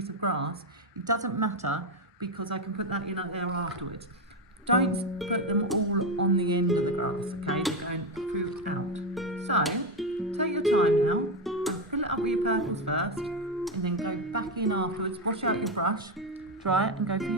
of grass, it doesn't matter, because I can put that in there afterwards. Don't put them all on the end of the grass, okay? They're going through out. So, take your time now, fill it up with your purples first, and then go back in afterwards, wash out your brush, dry it, and go for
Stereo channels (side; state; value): both; normal; correlation 0.10